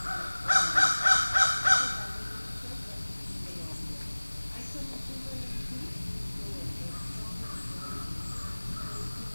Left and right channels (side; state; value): both; inverted; correlation -1.00